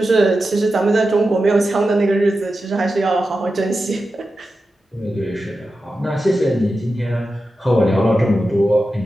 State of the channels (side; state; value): both; normal; correlation 0.91